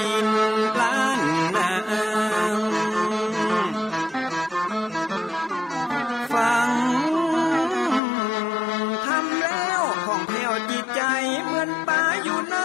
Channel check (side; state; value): right; drops out; at 8.0 s